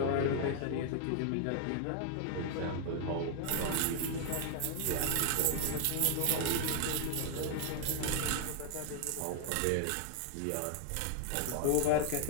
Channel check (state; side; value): different; both; correlation 0.00